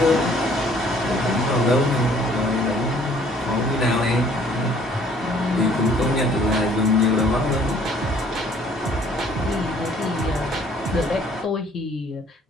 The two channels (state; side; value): normal; both; correlation 0.58